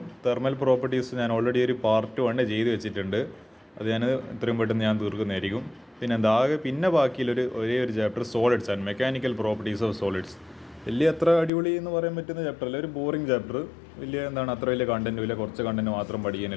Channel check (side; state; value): right; drops out; at 11.5 s